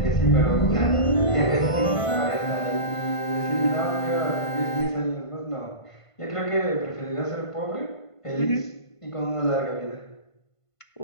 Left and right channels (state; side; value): late; right; 1.5 ms